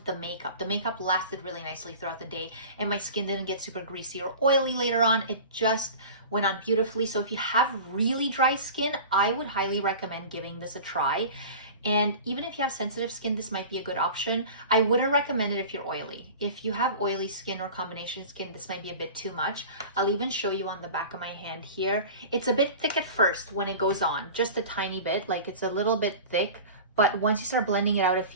the makeup. The makeup lasted really nicely throughout the day, and my skin didn't get super greasy or oily later on. It just went on beautifully. So if you have really dry skin, I would highly recommend giving this a try. And even if you have sensitive skin, this might be a good option. I wouldn't recommend it if you're oily. If you have oily skin or combination skin, this might be a bit too much. I'll even show you on the back of my hand here. It's a bit thick at first when it goes on, just a tiny bit, like it's a little bit thick. But once you start blending it out, it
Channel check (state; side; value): inverted; both; correlation -0.37